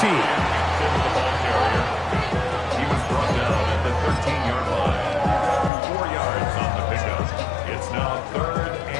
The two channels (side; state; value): right; drops out; at 5.7 s